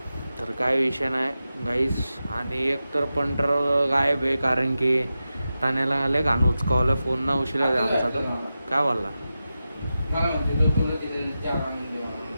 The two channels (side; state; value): both; inverted; correlation -0.92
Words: तर काय विषय नाही गाईस. आणि एक तर पंटर गायब आहे, कारण की ठाण्याला आले घाण उचकावलं. फोन ना उशिरा आमचा. तो काय बोलला